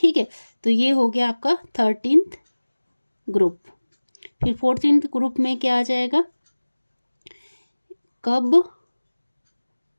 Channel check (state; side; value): inverted; both; correlation -1.00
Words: है, तो ये हो गया आपका 13th ग्रुप। फिर 14th ग्रुप में क्या आ जाएगा? कब